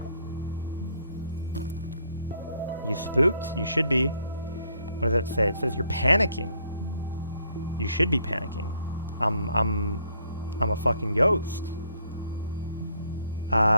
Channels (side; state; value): both; inverted; correlation -0.67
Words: You spooked? You should be. What does that say? It says you're panicking. You should be panicking. I'm a fucking ghost.